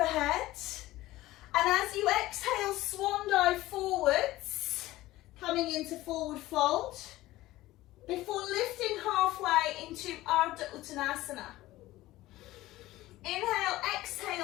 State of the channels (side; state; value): right; quieter; 17.0 dB